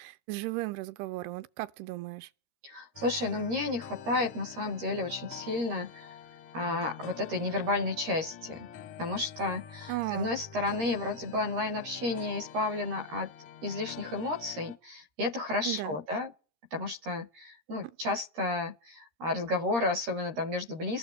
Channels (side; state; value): left; late; 13 ms